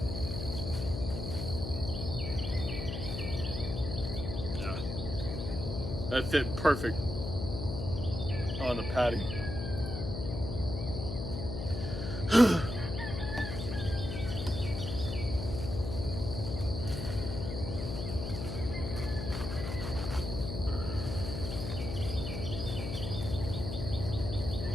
Yeah, that fit perfect on the patty.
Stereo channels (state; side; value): noise; left; hum, 4 dB below the sound